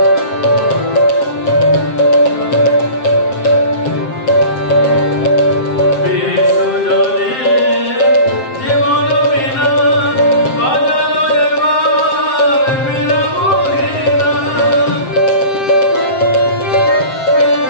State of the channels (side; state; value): right; late; 7.6 ms